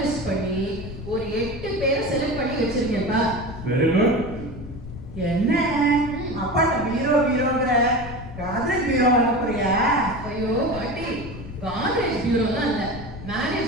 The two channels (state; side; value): noise; left; rumble, 11 dB below the sound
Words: பண்ணி ஒரு 8 பேரை செலக்ட் பண்ணி வச்சிருக்கேன்ப்பா. Very good. என்ன அப்பாட்ட பீரோங்கிற காதல் பீரோ வாங்க போறியா? ஐயோ பாட்டி, காலேஜ் பியூரோலாம் இல்ல,